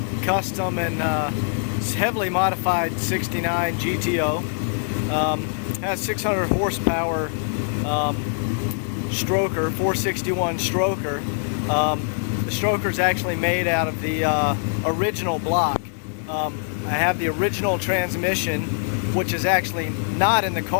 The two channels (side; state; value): right; silent; digital silence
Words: custom and heavily modified 69 GTO. Has 600 horsepower stroker, 461 stroker. The stroker is actually made out of the original block. I have the original transmission, which is actually not in the